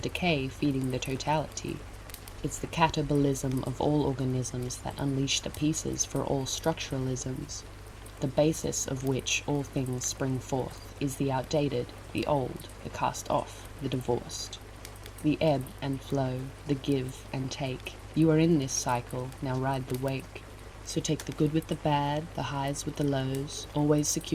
feeding the totality. It's the catabolism of all organisms that unleash the pieces for all structuralisms, the basis of which all things spring forth is the outdated, the old, the cast off, the divorced. The ebb and flow, the give and take. You are in this cycle, now ride the wake. So take the good with the bad, the highs with the lows, always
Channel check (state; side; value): identical; both; correlation 1.00